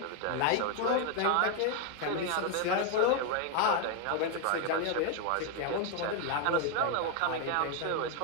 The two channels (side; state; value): both; different; correlation 0.01